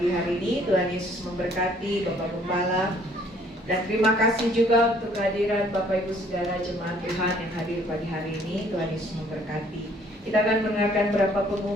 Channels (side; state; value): both; normal; correlation 0.60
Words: hari ini. Tuhan Yesus memberkati Bapak Gembala. Dan terima kasih juga untuk kehadiran Bapak Ibu Saudara jemaat Tuhan yang hadir pagi hari ini. Tuhan Yesus memberkati. Kita akan mendengarkan beberapa